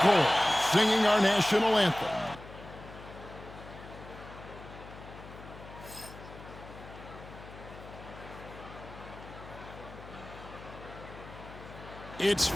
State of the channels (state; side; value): noise; left; hum, 15 dB below the sound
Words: Cole, singing our national anthem. It's